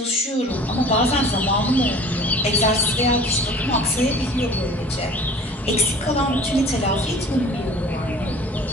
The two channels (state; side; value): normal; both; correlation 0.45